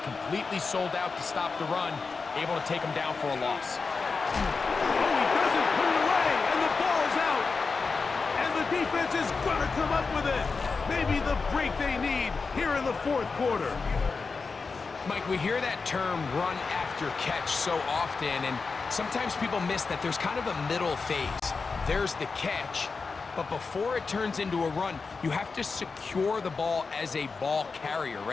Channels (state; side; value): quieter; right; 4.6 dB